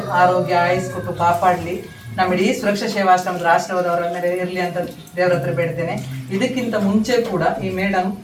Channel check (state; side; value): identical; both; correlation 1.00